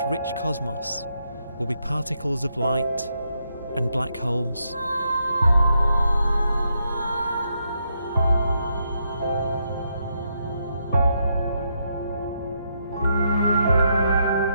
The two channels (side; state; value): both; inverted; correlation -0.79